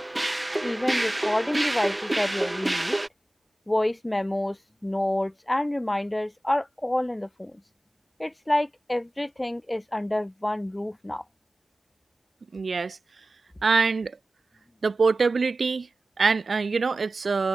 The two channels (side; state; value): both; normal; correlation 0.96